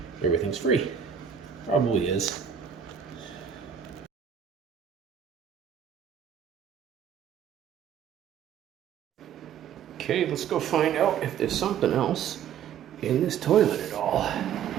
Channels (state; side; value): quieter; left; 8.4 dB